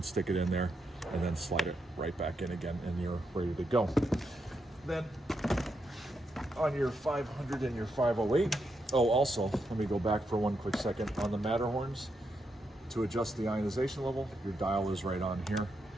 stick it in there and then slide it right back in again, and you're ready to go. Then on your 500 and your 508, also, let me go back for one quick second. On the Matterhorns, to adjust the ionization level, your dial is right on here.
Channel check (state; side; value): normal; both; correlation 0.82